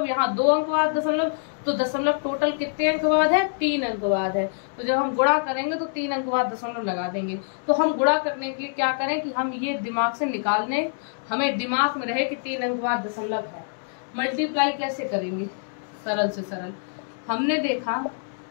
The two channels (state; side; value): silent; right; digital silence